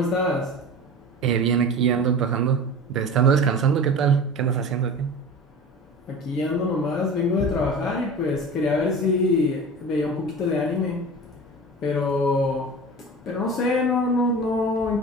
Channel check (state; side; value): normal; both; correlation 0.34